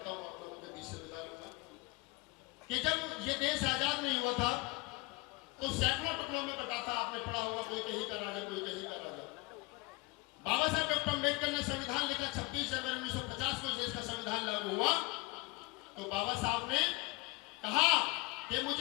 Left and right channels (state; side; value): quieter; right; 23.2 dB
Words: हूँ, आप लोगों के बीच से विदा लूंगा। कि जब ये देश आजाद नहीं हुआ था तो सैकड़ों टुकड़ों में बटा था, आपने पढ़ा होगा, कोई कहीं का राजा कोई कहीं का राजा। बाबा साहब डॉक्टर अम्बेडकर ने संविधान लिखा, 26 जनवरी 1950 को देश का संविधान लागू हुआ। तो बाबा साहब ने कहा कि